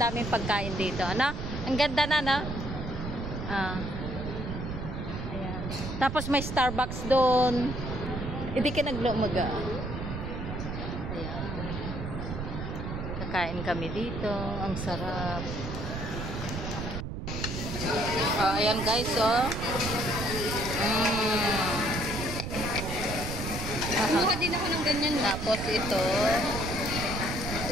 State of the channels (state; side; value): noise; right; rumble, 5 dB below the sound